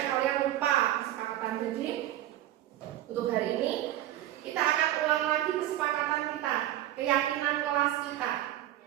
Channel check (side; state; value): left; quieter; 13.5 dB